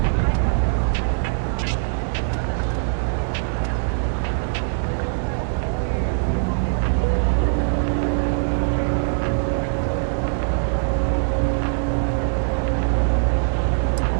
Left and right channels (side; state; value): left; silent; digital silence